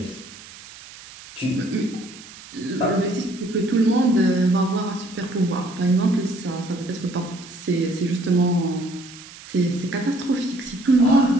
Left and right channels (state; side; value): noise; right; hiss, 18 dB below the sound